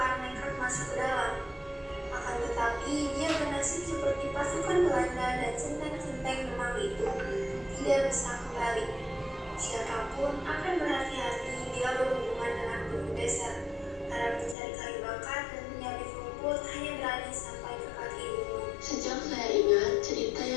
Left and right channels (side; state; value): right; drops out; at 14.6 s